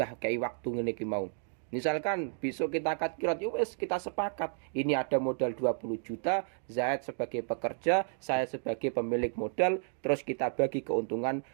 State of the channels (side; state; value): left; silent; 56 dB below the other